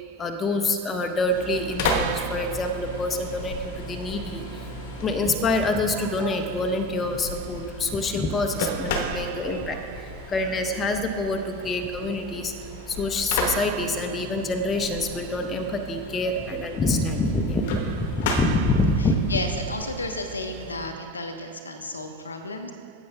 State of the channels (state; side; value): normal; both; correlation 0.34